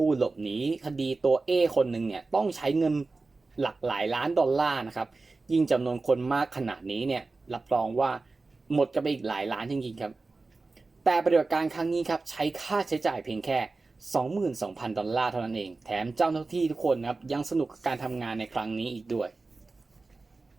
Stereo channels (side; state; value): left; quieter; 3.7 dB